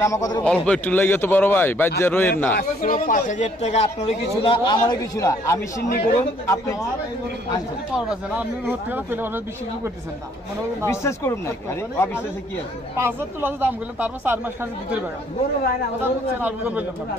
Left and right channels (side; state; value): both; normal; correlation 0.64